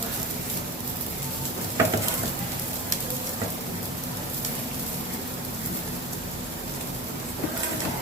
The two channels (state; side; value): normal; both; correlation 0.29